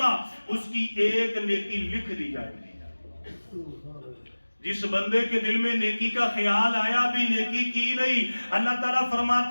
اس کی ایک نیکی لکھ دی جائے گی۔ جس بندے کے دل میں نیکی کا خیال آیا بھی نیکی کی نہیں، اللہ تعالیٰ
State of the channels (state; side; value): inverted; both; correlation -1.00